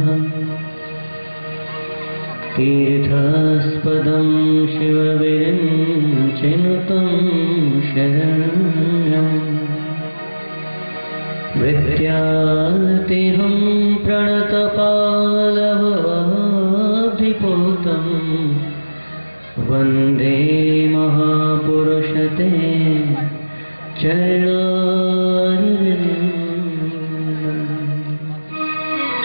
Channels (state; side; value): inverted; both; correlation -1.00